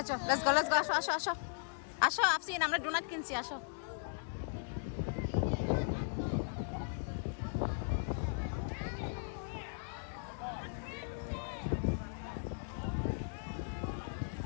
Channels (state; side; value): silent; right; digital silence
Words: go আসো আসো আসো আসো আফসিন, আমরা ডোনাট কিনছি, আসো।